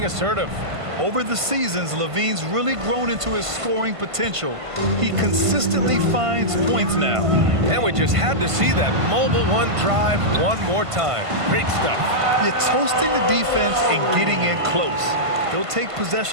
assertive. Over the seasons, Levine's really grown into his scoring potential. He consistently finds points now. And we just had to see that mobile one drive one more time. Great stuff. You're toasting the defense and getting in close. They'll take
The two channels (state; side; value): late; left; 1.5 ms